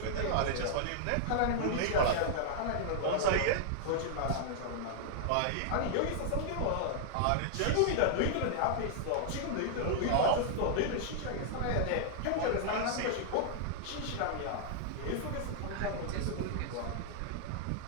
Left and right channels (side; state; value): both; different; correlation -0.01